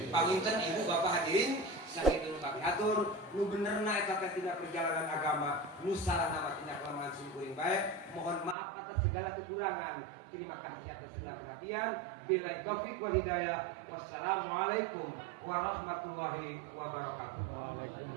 Panginten ibu bapak hadirin sakit dulu kami atur nu benerna eta tina perjalanan agama nu salahna mah tina kelemahan sing baik. Mohon maaf atas segala kekurangan. Terima kasih atas segala perhatian. Billahi taufik wal hidayah. Wassalamualaikum warahmatullahi wabarakatuh.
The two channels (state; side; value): drops out; left; at 8.6 s